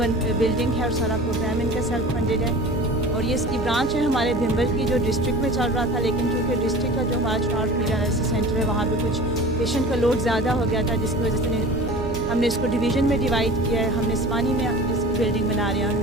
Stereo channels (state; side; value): noise; right; hum, 12 dB below the sound